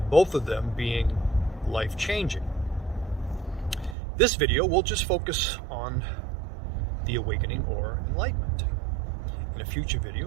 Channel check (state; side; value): drops out; left; at 4.0 s